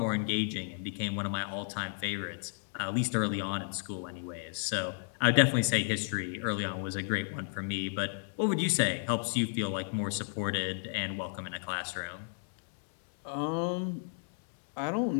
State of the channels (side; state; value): right; silent; digital silence